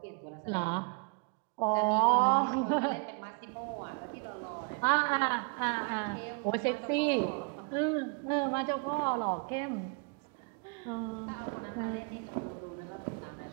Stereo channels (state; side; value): quieter; left; 33.4 dB